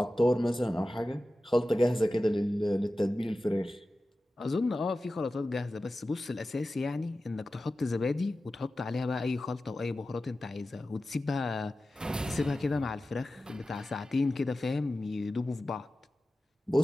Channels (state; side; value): normal; both; correlation 0.94